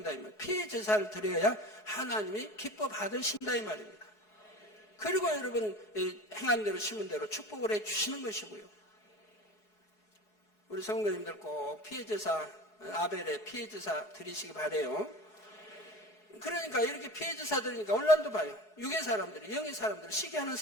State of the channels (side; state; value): right; late; 4.7 ms